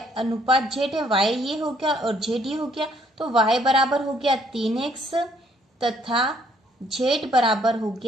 अनुपात z है, y ये हो गया और z ये हो गया, तो y बराबर हो गया 3x तथा z बराबर हो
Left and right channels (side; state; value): both; normal; correlation 0.66